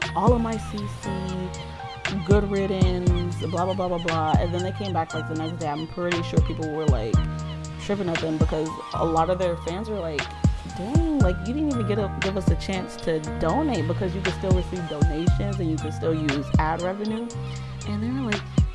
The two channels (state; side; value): identical; both; correlation 1.00